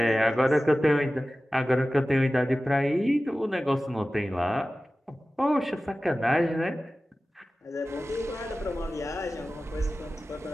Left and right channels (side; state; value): both; normal; correlation 0.96